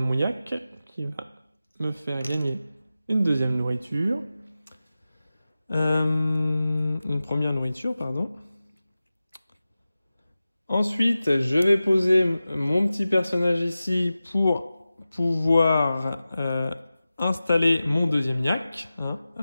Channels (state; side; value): inverted; both; correlation -0.95